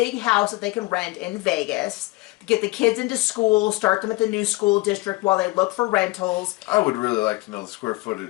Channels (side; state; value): right; quieter; 21.6 dB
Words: house that they can rent in Vegas to get the kids into school, start them at the new school district while they look for rentals. I would really like to know the square